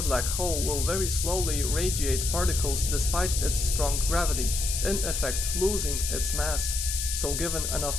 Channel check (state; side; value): noise; left; hiss, 2 dB below the sound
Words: black hole will very slowly radiate particles despite its strong gravity, in effect losing its mass. So given enough